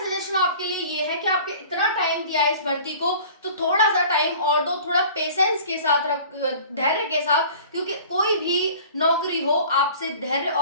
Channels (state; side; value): inverted; both; correlation -0.44